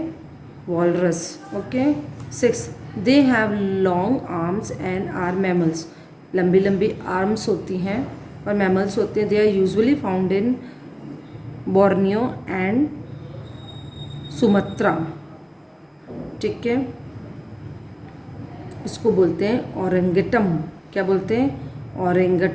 Walrus. Okay. 6 they have long arms and are mammals. लंबी लंबी आर्म्स होती हैं और मैमल्स होते हैं। They are usually found in Borneo and Sumatra. ठीक है, इसको बोलते हैं ओरेंगटम। क्या बोलते हैं?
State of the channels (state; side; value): identical; both; correlation 1.00